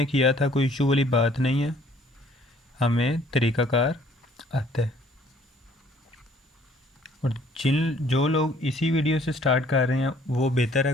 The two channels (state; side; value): normal; both; correlation 0.59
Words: किया था, कोई इशू वाली बात नहीं है, हमें तरीक़ाकार आता है। और जो लोग इसी वीडियो से स्टार्ट कर रहे हैं वो बेहतर